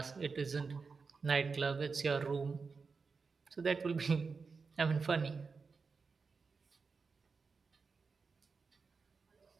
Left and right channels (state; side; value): quieter; left; 4.8 dB